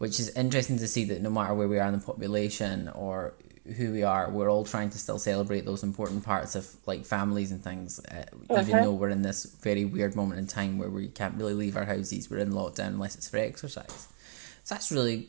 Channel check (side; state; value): left; silent; digital silence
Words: interesting to see that no matter where we are in the population or who we are, we're all trying to still celebrate those important parts of like families and things, even though we're in this very weird moment in time where we can't really leave our houses. We're in lockdown unless it's for exercise. So it's